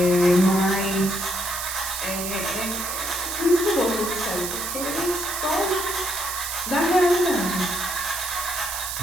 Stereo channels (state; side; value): noise; right; hiss, 4 dB below the sound